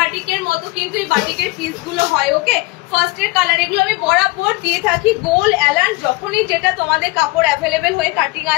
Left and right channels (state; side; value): quieter; right; 23.5 dB